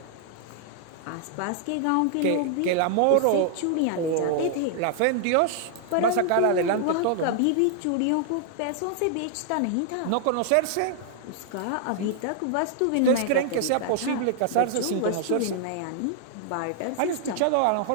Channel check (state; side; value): different; both; correlation 0.00